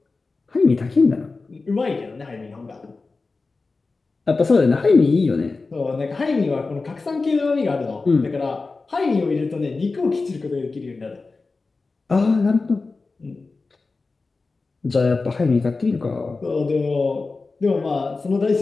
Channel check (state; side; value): quieter; right; 3.9 dB